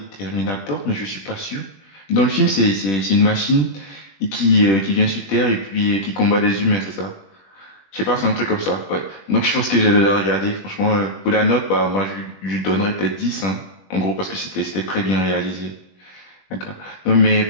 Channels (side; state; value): right; late; 20 ms